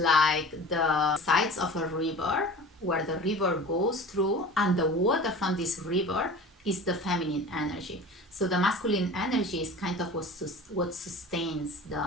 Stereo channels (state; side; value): normal; both; correlation 0.39